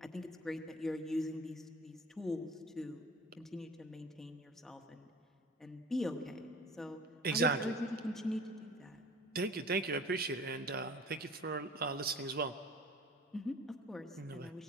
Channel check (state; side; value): normal; both; correlation 0.44